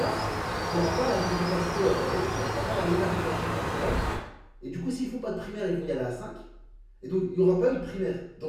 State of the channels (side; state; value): both; identical; correlation 1.00